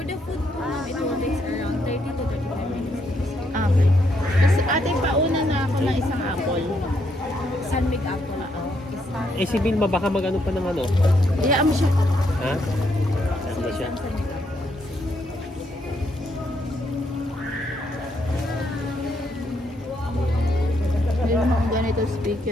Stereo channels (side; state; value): both; normal; correlation 0.75